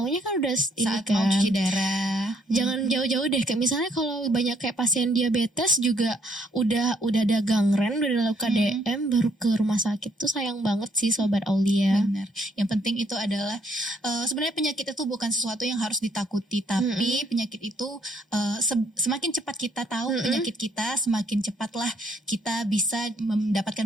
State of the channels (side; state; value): both; normal; correlation 0.68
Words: kan udah ini saat kan mau cuci darah. Jangan jauh-jauh deh, kayak misalnya kalau banyak kayak pasien diabetes juga udah ada gangren, udah ada luka DM baru ke rumah sakit tuh sayang banget sih Sobat Aulia. Benar. Yang penting itu adalah sebenarnya penyakit itu bukan sesuatu yang harus ditakuti, tapi penyakit itu semakin cepat kita tahu penyakit kita, semakin cepatlah kita bisa